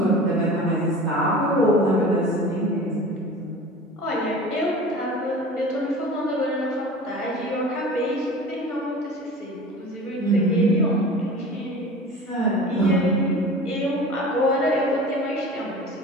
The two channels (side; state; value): both; normal; correlation 0.38